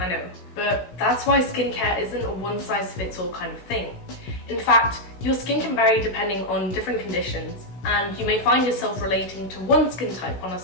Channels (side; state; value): right; late; 16 ms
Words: know, but that's why skincare isn't a one-size-fits-all kind of thing. In fact, your skin can vary depending on different conditions, and you may find yourself relating to one skin type on a